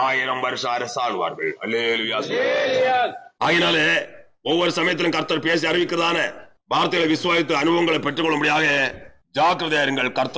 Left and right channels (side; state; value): both; identical; correlation 1.00